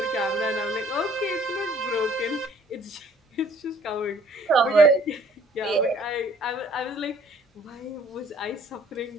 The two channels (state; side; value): normal; both; correlation 0.57